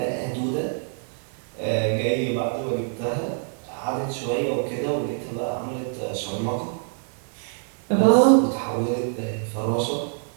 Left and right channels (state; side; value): silent; left; digital silence